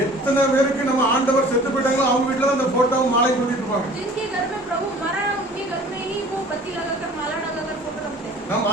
எத்தனை பேருக்கு நம்ம ஆண்டவர் செத்து போயிட்டாங்களோ அவங்க வீட்டுல தான் அந்த போட்டோவும் மாலை கொடுத்துட்டு இருப்பாங்க. जिनके घर में प्रभु मरा है उनके घर में ही वो बत्ती लगाकर माला लगाकर फोटो रखते हैं நம்ம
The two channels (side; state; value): both; normal; correlation 0.48